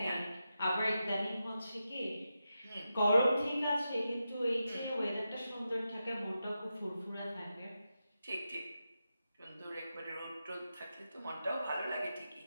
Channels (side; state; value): both; inverted; correlation -0.89